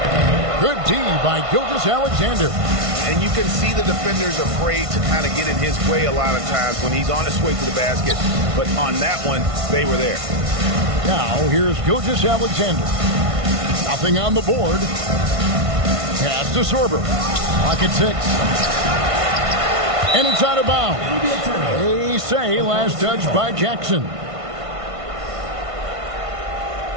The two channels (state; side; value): late; left; 1.5 ms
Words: Good D by Gilgeous Alexander. And you can see the defenders afraid to kind of get in his way a lot of times when he's on his way to the basket. But on that one, they were there. Now, here's Gilgeous Alexander. Nothing on the board. Pass to Sorber. Clock at 6. And it's out of bounds. They say last touch by Jackson.